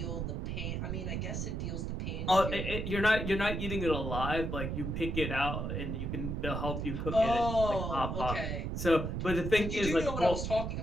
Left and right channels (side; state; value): right; noise; rumble, 3 dB below the sound